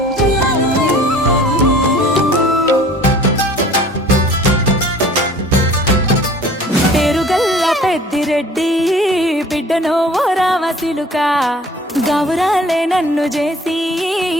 పేరుగల్ల పెద్దిరెడ్డి బిడ్డనో ఓ రామసిలుక గౌరాలే నన్ను చేసి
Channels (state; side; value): normal; both; correlation 0.49